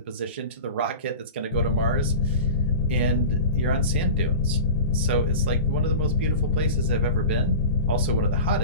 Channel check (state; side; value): inverted; both; correlation -0.33